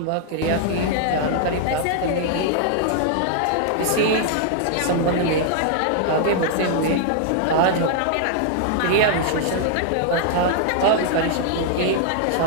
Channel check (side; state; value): both; different; correlation -0.01